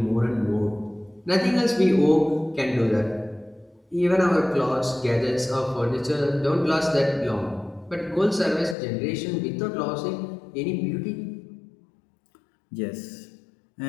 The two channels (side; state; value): right; drops out; at 8.8 s